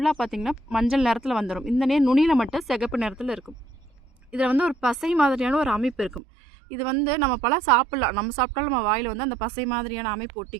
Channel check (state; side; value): drops out; left; at 6.2 s